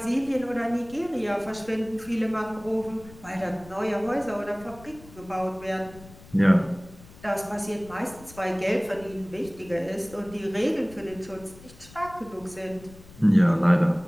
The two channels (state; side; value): noise; left; rumble, 20 dB below the sound